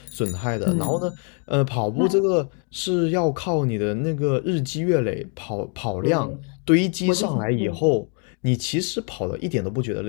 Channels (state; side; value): quieter; right; 38.8 dB